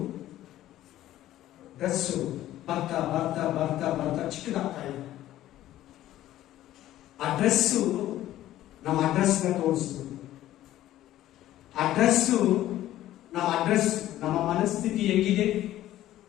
ಬರ್ತಾ ಚಿಕ್ಕದಾಗ್ತಾ ಇದೆ. ಆ ಡ್ರೆಸ್ಸು ನಮ್ಮ ಅಡ್ರೆಸ್ ತೋರಿಸ್ತು. ನಮ್ಮ ಅಡ್ರೆಸ್ ನಮ್ಮ ಮನಸ್ಥಿತಿ ಹೆಂಗಿದೆ,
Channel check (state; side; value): quieter; right; 13.8 dB